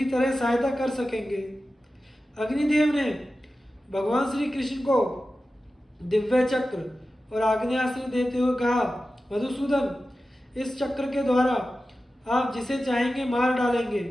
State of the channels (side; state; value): both; normal; correlation 0.94